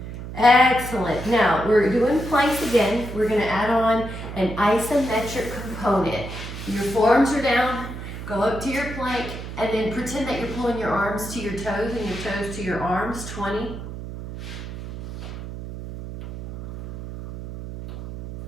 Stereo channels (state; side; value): noise; right; hum, 9 dB below the sound